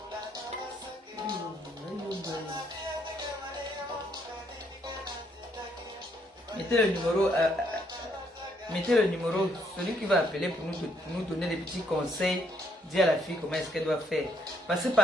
Mettez le numéro, celui qui va appeler pour nous donner des petits conseils, dire à la fille comment est-ce qu'elle doit faire. Parce que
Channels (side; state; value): both; normal; correlation 0.71